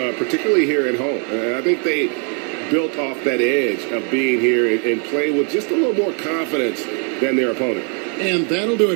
here at home. And I think they built off that edge of being here and play with just a little more confidence than their opponent. And that'll do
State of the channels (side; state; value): left; quieter; 37.2 dB